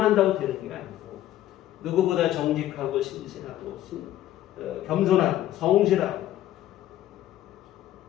한다고 되는 게 아니고 누구보다 정직하고 신실하고 겸손하고 성실하고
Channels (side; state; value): right; quieter; 13.2 dB